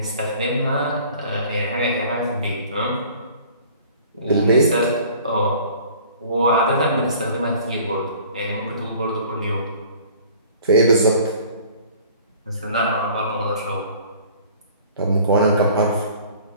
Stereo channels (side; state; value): both; inverted; correlation -0.49